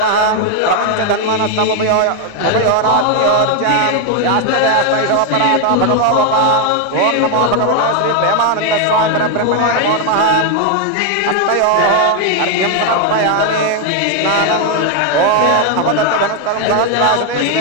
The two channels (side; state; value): both; different; correlation 0.01